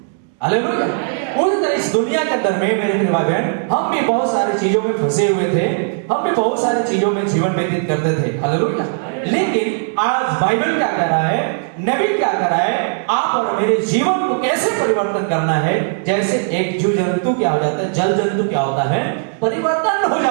हालेलुया। उस तरह इस दुनिया के अंदर में मेरे प्रिय भाई बहन, हम भी बहुत सारी चीजों में फंसे हुए थे, हम भी बहुत सारी चीजों में जीवन व्यतीत करते थे, हालेलुया। लेकिन आज बाइबल क्या कह रहा है, नबी क्या कह रहा है, आप और मेरे जीवन को कैसे परिवर्तन करना है। जैसे एक जीव जंतु क्या हो जाता है, जल जंतु क्या होता है, परिवर्तन हो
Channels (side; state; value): left; silent; digital silence